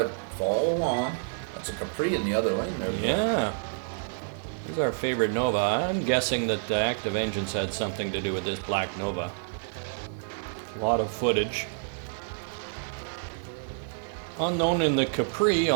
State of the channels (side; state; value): left; silent; digital silence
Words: follow along. That's a Capri in the other lane there, Bill. Yeah. Here's our favorite Nova. I'm guessing that the active engines had something to do with this black Nova. A lot of footage. Unknown in the Capri,